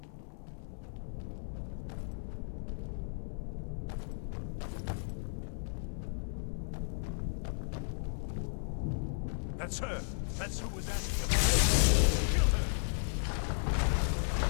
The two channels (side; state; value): right; silent; 55 dB below the other